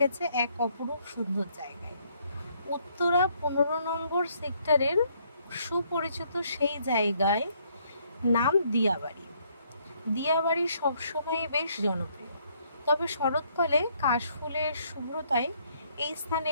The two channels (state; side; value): inverted; both; correlation -0.68